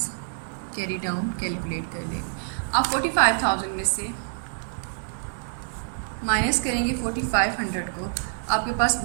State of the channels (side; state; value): left; silent; digital silence